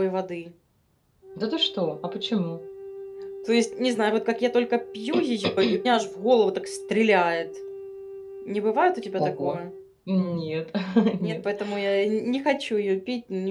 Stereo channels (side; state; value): both; identical; correlation 1.00